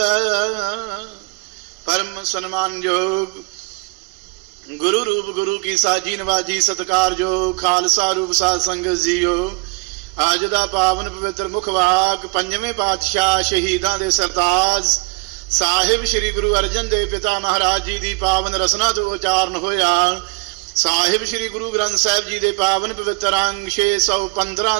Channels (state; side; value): quieter; left; 30.6 dB